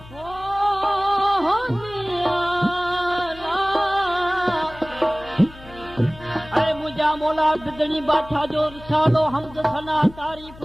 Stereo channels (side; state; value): left; noise; hum, 19 dB below the sound